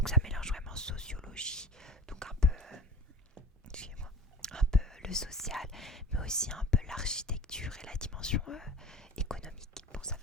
ça mélange vraiment sociologie, donc un peu, excusez-moi, un peu le social, mais aussi un peu l'architecture et la dimension économique. Bon, ça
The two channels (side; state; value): both; normal; correlation 0.36